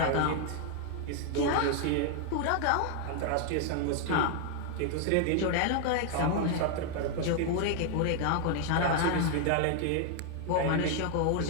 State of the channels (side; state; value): both; different; correlation 0.00